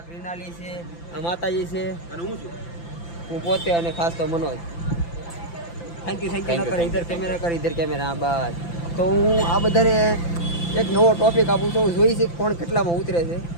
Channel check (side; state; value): right; late; 5.9 ms